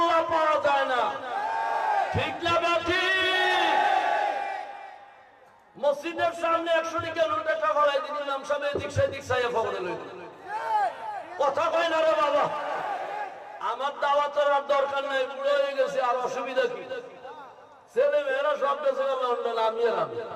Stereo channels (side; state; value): both; identical; correlation 1.00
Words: পাওয়া যায় না ঠিক না বেঠি মসজিদের সামনে 100 টাকা নোট একটা গলায় দিন নাম সামনে এদিক সেদিক চাইয়া ফগড়ে লইল কথা কয় না রে বাবা আমার দাওয়াতের আর দরকার নাই বুড়ো হয়ে গেছে আর অসুবিধা কি ছেলে মেয়েরা সব দেশে লন্ডন আমি আর আমি